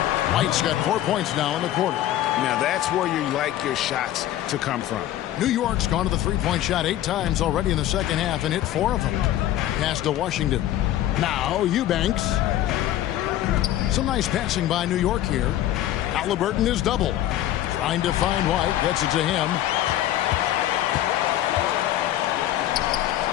White's got 4 points now in the quarter. Now that's where you like your shots to come from. New York's gone to the 3-point shot 8 times already in the second half and hit 4 of them. Pass to Washington. Now Eubanks. Some nice passing by New York here. Halliburton is double. Trying to find White. Gets it to him.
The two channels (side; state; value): right; quieter; 13.1 dB